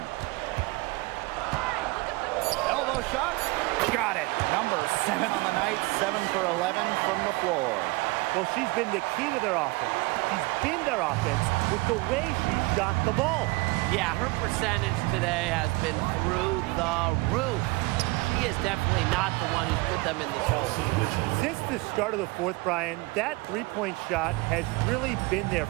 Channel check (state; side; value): quieter; left; 24.3 dB